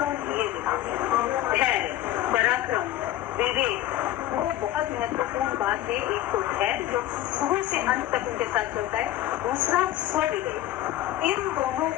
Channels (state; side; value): quieter; right; 13.8 dB